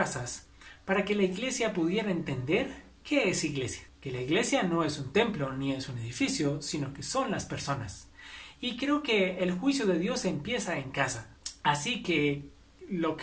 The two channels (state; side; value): identical; both; correlation 1.00